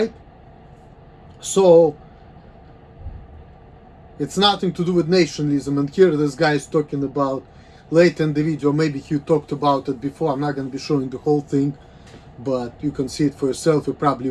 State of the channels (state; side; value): identical; both; correlation 1.00